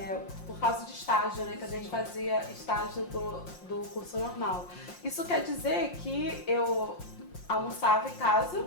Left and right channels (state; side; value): late; right; 5.6 ms